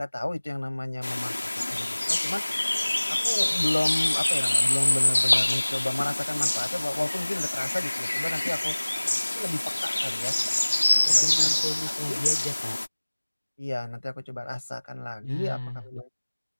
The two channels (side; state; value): both; inverted; correlation -1.00